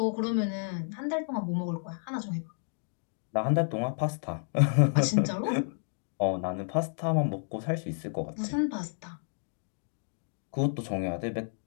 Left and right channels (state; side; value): silent; right; digital silence